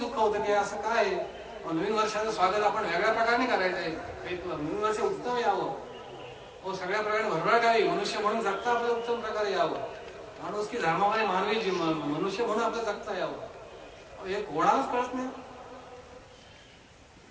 होतं की असं काय नवीन वर्षाचं स्वागत आपण वेगळ्या प्रकारे करायचंय. नवीन वर्ष उत्तम यावं सगळ्या प्रकारे भरभराट यावी मनुष्य म्हणून जगता आपलं उत्तम प्रकारे यावं. माणूस की धर्मामध्ये मानवी मनुष्य म्हणून आपलं जगता यावं हे कोणालाच कळत नाही.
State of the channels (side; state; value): both; identical; correlation 1.00